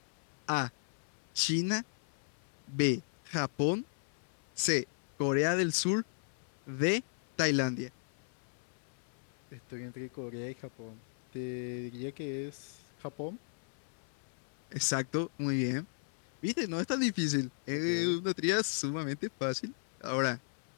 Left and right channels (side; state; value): right; silent; 54 dB below the other